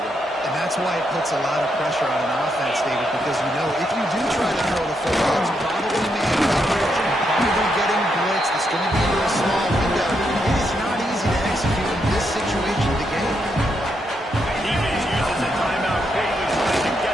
And that's why it puts a lot of pressure on an offense, David, because you know if you do try to throw the football, it's probably man coverage, probably getting blitzed. It's going to be into a small window. It is not easy to execute in this situation of the game. Defense uses a timeout quickly, trying to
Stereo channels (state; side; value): normal; both; correlation 0.80